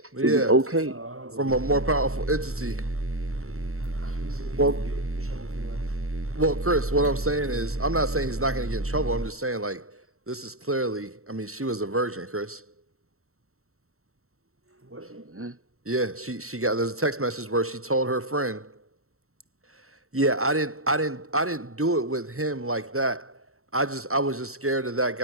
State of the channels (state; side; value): late; left; 0.63 ms